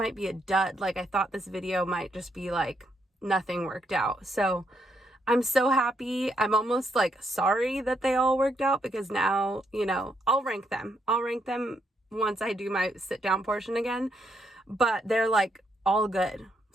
be a dud. Like I thought this video might just be like nothing worked out. So I'm so happy. I'm almost like sorry that they all worked out, because now, you know, I'll rank them once I do my sit down portion again, but they're like all good.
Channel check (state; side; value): normal; both; correlation 0.76